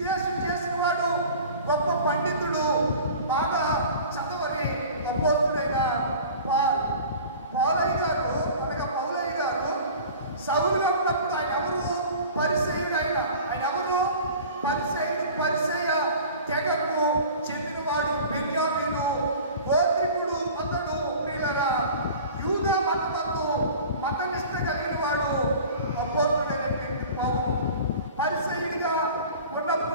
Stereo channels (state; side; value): inverted; both; correlation -0.41